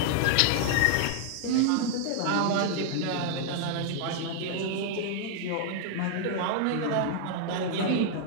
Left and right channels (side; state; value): both; different; correlation 0.00